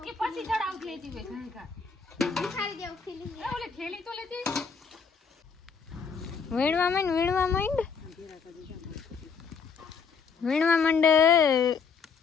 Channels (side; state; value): right; quieter; 5.8 dB